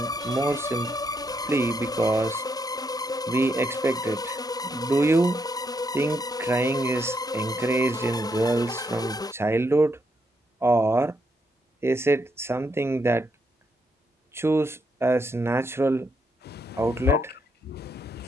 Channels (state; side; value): normal; both; correlation 0.78